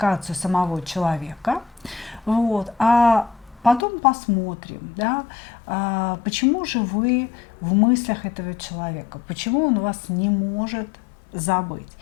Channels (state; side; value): drops out; right; at 3.9 s